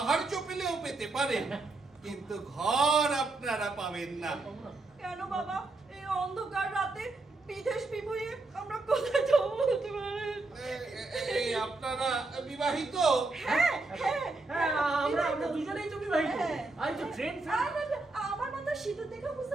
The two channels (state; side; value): quieter; left; 3.3 dB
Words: পেলেও পেতে পারেন, কিন্তু ঘর আপনারা পাবেন না। কেন বাবা, এই অন্ধকার রাতে বিদেশ বিভুঁইয়ে আমরা কোথায় যাবো বলতে পারেন? এই আপনারা বিবাহিত? হ্যাঁ হ্যাঁ হ্যাঁ, আমরা দুজনেই তো বিবাহিত। আর তো ট্রেন আমার মাথা সিঁদুর দেখে বুঝতে